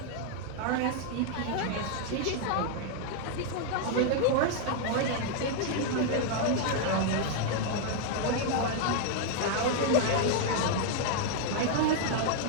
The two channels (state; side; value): different; both; correlation 0.00